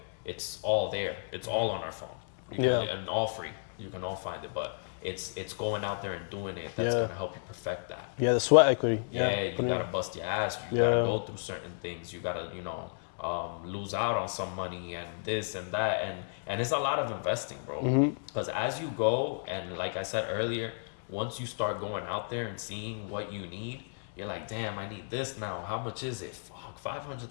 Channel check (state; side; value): silent; right; digital silence